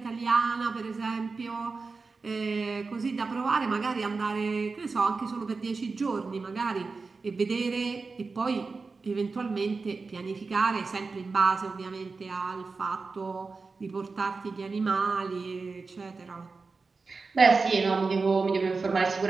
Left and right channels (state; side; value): quieter; left; 4.2 dB